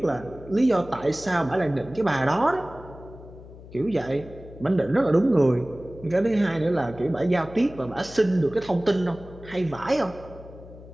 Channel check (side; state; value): left; noise; hum, 17 dB below the sound